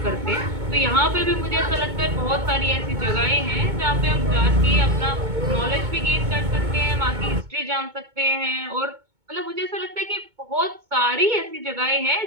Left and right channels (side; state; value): left; late; 2.2 ms